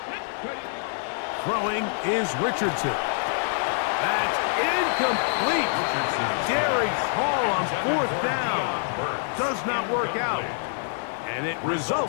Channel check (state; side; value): silent; right; digital silence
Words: Throwing is Richardson. That's incomplete. Derek Hall on 4th down. Does not work out. And it